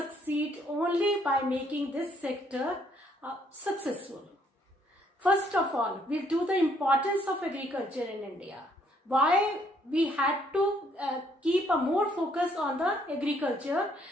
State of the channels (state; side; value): normal; both; correlation 0.67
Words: only by making this sector successful. First of all, we'll do the importance of agriculture in India. Why we had to keep a more focus on the agriculture